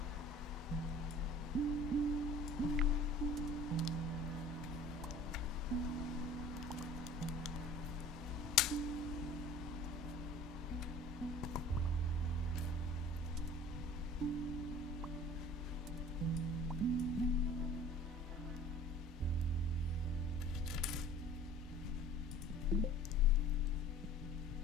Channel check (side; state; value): both; normal; correlation 0.45